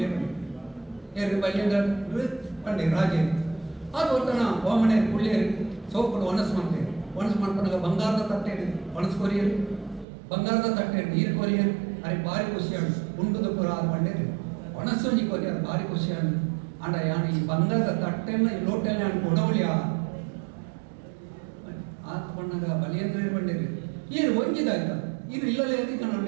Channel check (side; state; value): left; drops out; at 10.1 s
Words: ಏರು ಬಲ್ಯಂದ್ರ ಪಂಡೆ ರಾಜೇ ಅದು ಒತ್ತಣ ವಾಮನೆ ಕುಳ್ಳಿಯರು ಸೋಪಡು ಒಣಸು ಮಾಡ್ಕೊಂಡಾಗ ಬಂಗಾರದ ತಟ್ಟೆ ಒಣಸು ಕೊರಿಯರು ಬಂಗಾರದ ತಟ್ಟೆ ನೀರು ಕೊರಿಯರು ಅರೆ ಭಾರಿ ಖುಷಿಯಾಡು ಉಂಡುದ ಪುರ ಅದು ಪಂಡೇರಿ ಒಣಸೊಂಜಿ ಕೊರಿಯರು ಭಾರಿ ಖುಷಿಯಾಡು ಅಂಡ ಯಾನು ಈ ಬಂಗಾರದ ತಟ್ಟೆನ ಈ ಲೋಟೆಲ್ಲ ಅನ್ಕೊ ಉಡವಳಿಯ ಆತ ಬಣ್ಣಗ ಬಲಿಯಂದ್ರ ಬಂಡೇರಿ ಈರು ಒಂಜಿದಾಯ್ತ ಇದು ಇಲ್ಲಲೇ